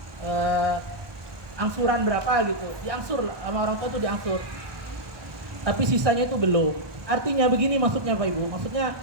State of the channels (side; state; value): left; late; 1.2 ms